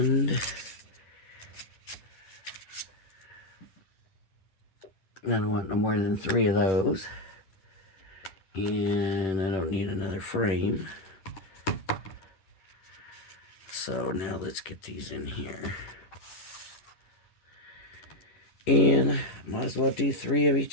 I don't want no more than 3 of those. And I don't need another frame. So now let's get these in here. And might as well do 3 of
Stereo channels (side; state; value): right; late; 11 ms